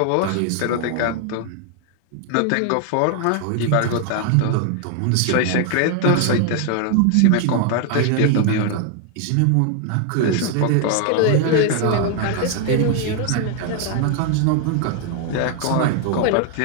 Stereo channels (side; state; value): both; different; correlation 0.00